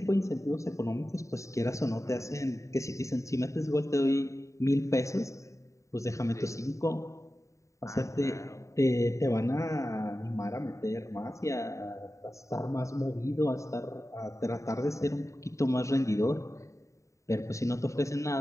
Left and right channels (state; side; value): late; right; 0.15 ms